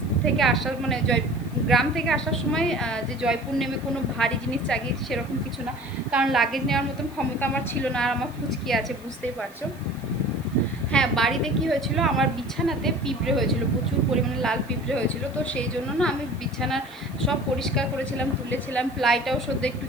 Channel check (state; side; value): noise; left; hiss, 24 dB below the sound